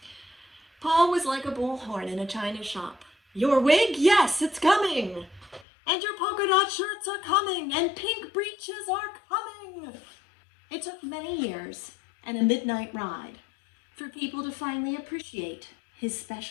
Paul was like a bullhorn in a china shop. "Your wig? Yes, it's coming. And your polka dot shirts are coming. And pink breeches are coming." It took many years and a midnight ride for people to finally appreciate his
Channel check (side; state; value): right; drops out; at 5.7 s